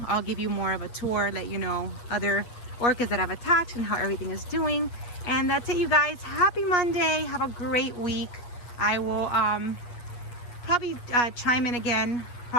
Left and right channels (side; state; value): right; late; 8.4 ms